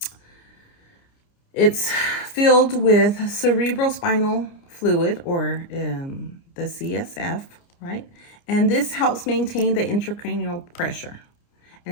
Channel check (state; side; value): late; right; 29 ms